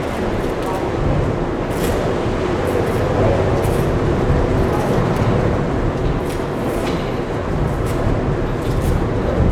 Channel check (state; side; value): identical; both; correlation 1.00